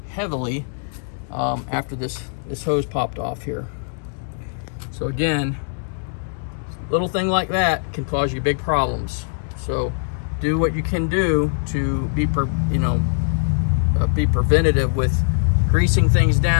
heavily after this hose popped off here. So again, little thing like that can cause you big problems. So do what you can do to be preventative with greasing things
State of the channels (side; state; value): right; silent; digital silence